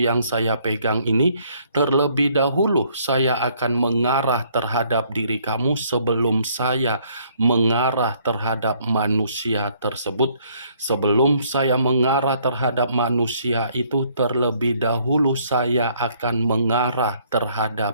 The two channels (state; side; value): inverted; both; correlation -0.65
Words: saya pegang ini, terlebih dahulu saya akan mengarah terhadap diri kamu sebelum saya mengarah terhadap manusia tersebut. Sebelum saya mengarah terhadap manusia itu, terlebih dahulu saya akan mengarah